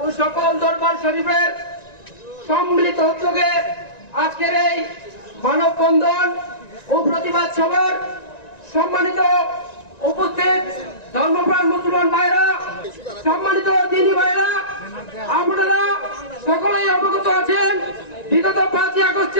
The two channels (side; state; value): right; late; 1.9 ms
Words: ও সকল দরবার শরীফের সম্মিলিত উদ্যোগে আজকের এই মানববন্ধন ও প্রতিবাদ সভার সম্মানিত উপস্থিত ধর্মপ্রাণ মুসলমান ভাইরা, সম্মানিত দ্বীনী ভাইরা, আপনারা সকলেই অবগত আছেন বিগত 5ই